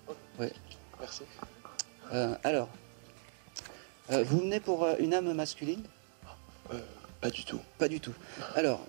Oui. Merci. Alors, vous venez pour une âme masculine? Pas du tout. Pas du tout. Alors,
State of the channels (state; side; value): silent; left; digital silence